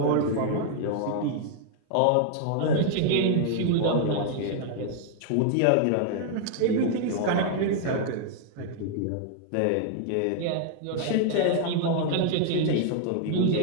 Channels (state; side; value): different; both; correlation 0.00